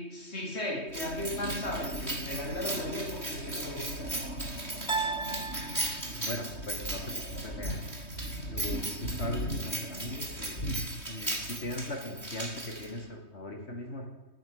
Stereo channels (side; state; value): right; late; 3.2 ms